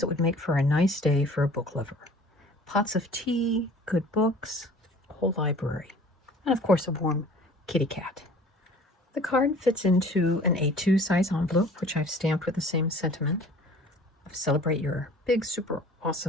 would make for a nice day for a book lover. Pots of tea, good books, a whole library, and of course a warm kitty cat. The card fits into an A2 size envelope, which I've stamped with the same sentiment of celebrate your big, super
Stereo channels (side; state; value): both; normal; correlation 0.48